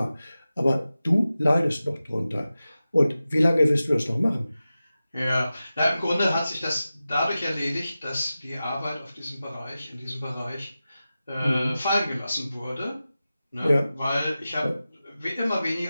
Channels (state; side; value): inverted; both; correlation -0.94